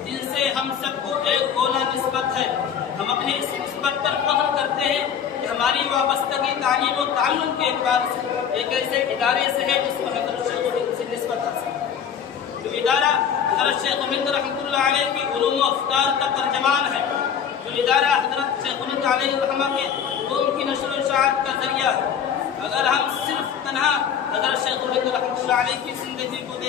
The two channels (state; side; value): quieter; right; 8.0 dB